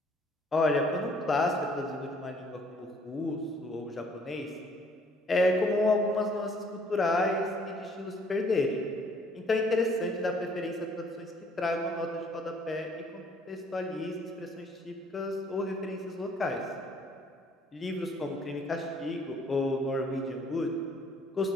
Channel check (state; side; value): normal; both; correlation 0.61